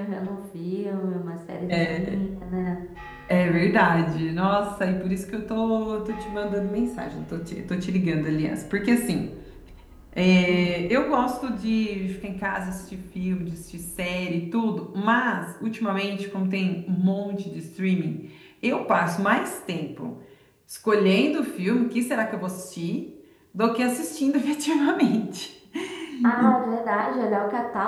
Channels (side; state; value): both; identical; correlation 1.00